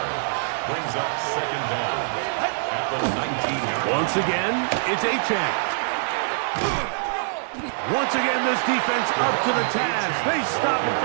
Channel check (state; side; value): silent; left; 63 dB below the other